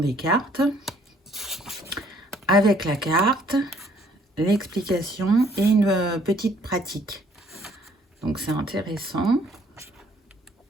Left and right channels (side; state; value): both; normal; correlation 0.62